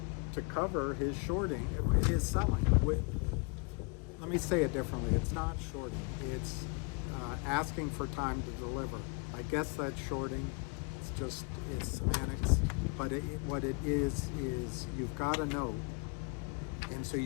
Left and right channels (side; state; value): right; quieter; 33.9 dB